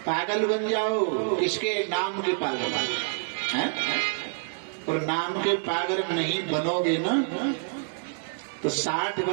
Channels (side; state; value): left; silent; 60 dB below the other